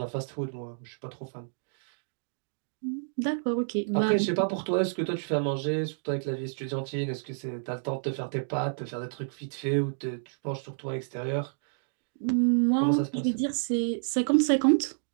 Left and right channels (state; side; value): silent; left; digital silence